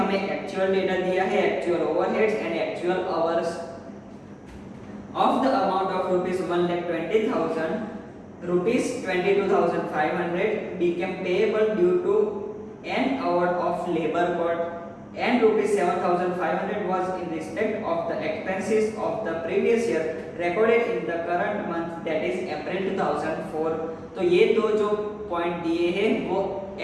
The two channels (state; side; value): identical; both; correlation 1.00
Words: एक्चुअल डेटा दिया है, actual overheads and actual hours. Of the amount of ₹1,20,000, ₹22,500 became payable due to an hour of labor cost and ₹7,500 was in respect of the expenses of the previous year recorded in the current month, that is April 2004। तो ये दो जो पॉइंट दिए हैं वो